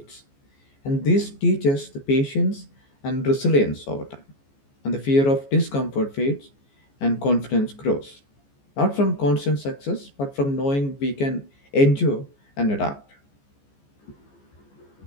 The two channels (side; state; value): right; late; 14 ms